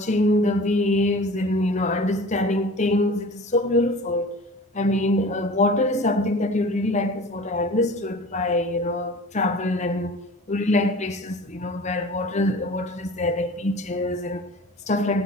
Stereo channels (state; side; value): normal; both; correlation 0.40